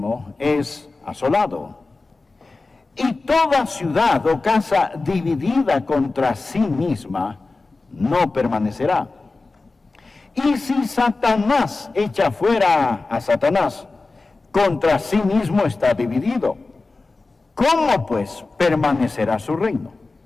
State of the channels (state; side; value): quieter; right; 3.6 dB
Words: es asolado, y toda ciudad o casa dividida contra sí misma no permanecerá. Y si Satanás echa fuera a Satanás, contra sí mismo está dividido. ¿Cómo pues permanecerá su reino?